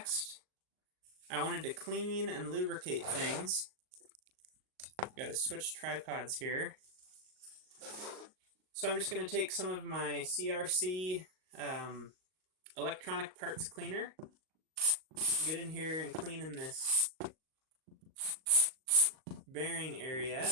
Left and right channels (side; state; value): left; late; 38 ms